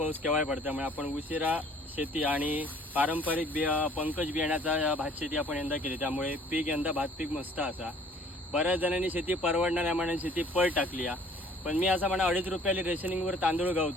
केव्हाही पडतो, त्यामुळे आपण उशिरा शेती आणि पारंपरिक पंकज बियाण्याचा भात शेती आपण यंदा केली, त्यामुळे पीक यंदा भात पीक मस्त असा. बऱ्याच जणांनी शेती परवडणाऱ्या मानाने शेती पळ टाकली आहे. पण मी असं म्हणा, 2.5 रुपयाला रेशनिंगवर तांदूळ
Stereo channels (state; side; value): normal; both; correlation 0.55